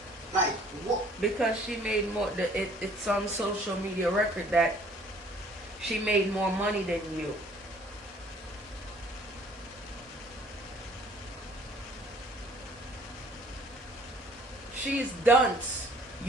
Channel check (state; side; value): normal; both; correlation 0.56